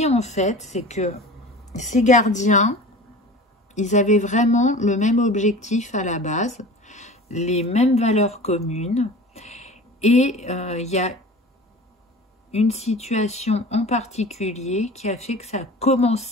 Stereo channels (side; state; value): both; normal; correlation 0.38